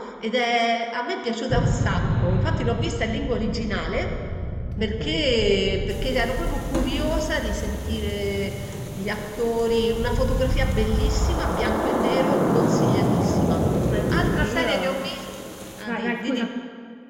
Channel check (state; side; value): identical; both; correlation 1.00